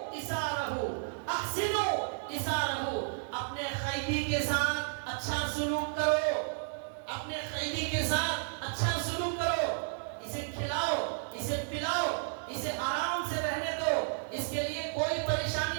اسارہو, احسنو اسارہو, اپنے قیدی کے ساتھ اچھا سلوک کرو, اپنے قیدی کے ساتھ اچھا سلوک کرو, اسے کھلاؤ, اسے پلاؤ, اسے آرام سے رہنے دو, اس کے لیے کوئی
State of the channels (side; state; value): left; silent; digital silence